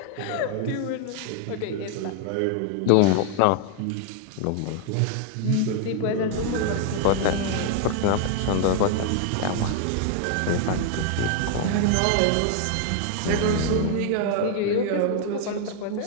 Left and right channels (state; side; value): different; both; correlation 0.00